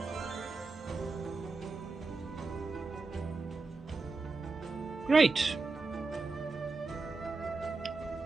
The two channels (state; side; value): quieter; left; 3.9 dB